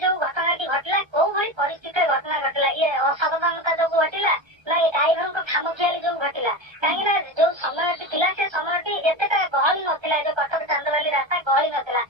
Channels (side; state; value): left; late; 1.3 ms